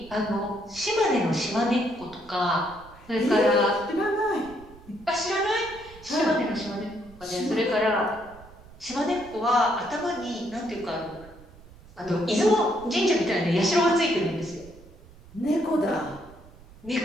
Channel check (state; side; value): noise; right; rumble, 22 dB below the sound